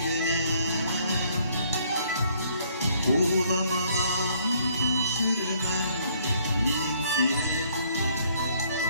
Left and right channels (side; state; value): both; inverted; correlation -0.64